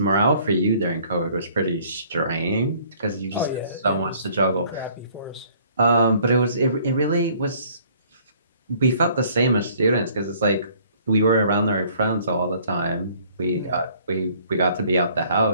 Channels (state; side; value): inverted; both; correlation -0.58